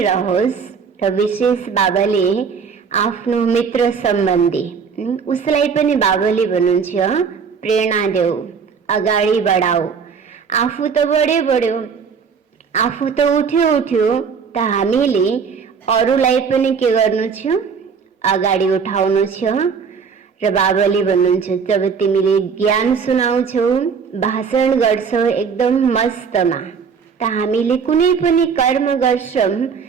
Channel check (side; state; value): left; quieter; 6.1 dB